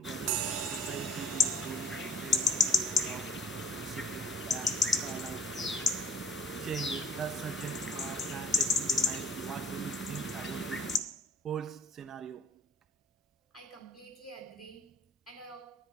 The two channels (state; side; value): normal; both; correlation 0.55